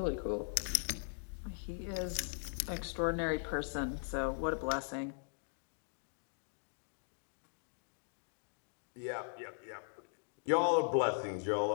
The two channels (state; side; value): silent; right; digital silence